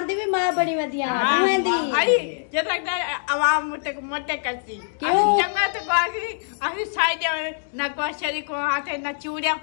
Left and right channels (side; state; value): right; silent; digital silence